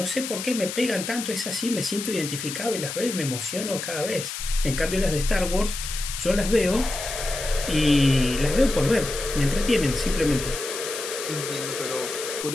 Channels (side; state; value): left; noise; hiss, 6 dB below the sound